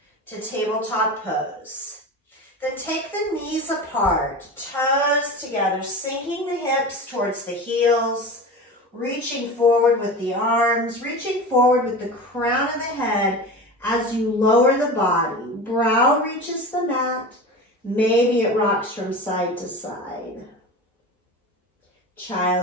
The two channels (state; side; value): normal; both; correlation 0.30